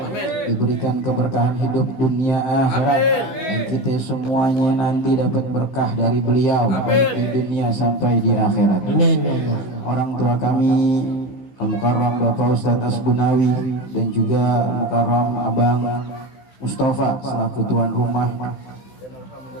diberikan keberkahan hidup dunia akhirat, dan kita semuanya nanti dapat berkah dari beliau baik di dunia sampai di akhirat. Orang tua kami Al-Mukarram Bapak Ustadz Asbunawi dan juga Al-Mukarram Abang Mustafa selaku tuan rumah.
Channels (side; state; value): right; late; 16 ms